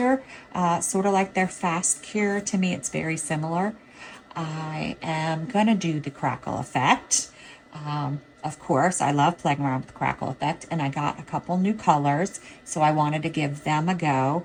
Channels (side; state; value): both; identical; correlation 1.00